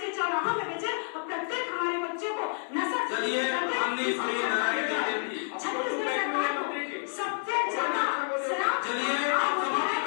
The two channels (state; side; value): silent; right; 58 dB below the other